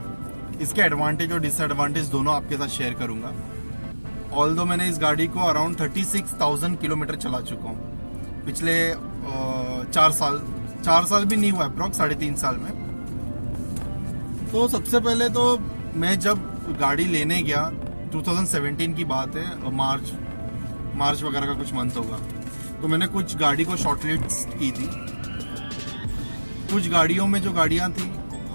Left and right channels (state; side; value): inverted; both; correlation -1.00